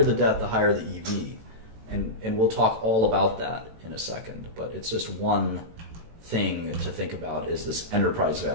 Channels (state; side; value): late; left; 18 ms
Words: the debt, the higher the EV. And we'll talk all about that in a second, but it's just one thing to think about is this enterprise